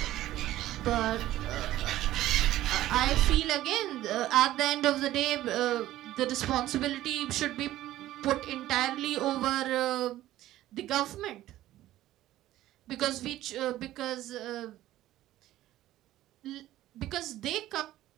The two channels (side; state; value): left; quieter; 14.6 dB